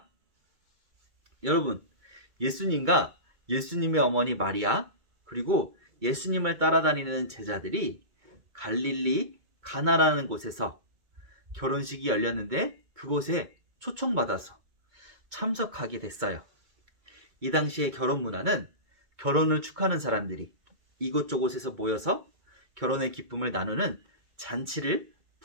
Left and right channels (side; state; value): left; late; 2.2 ms